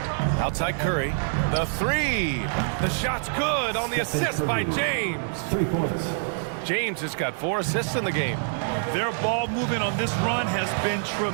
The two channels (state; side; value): silent; left; digital silence